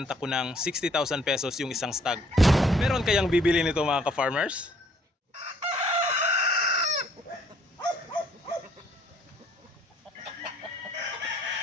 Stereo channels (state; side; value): normal; both; correlation 0.62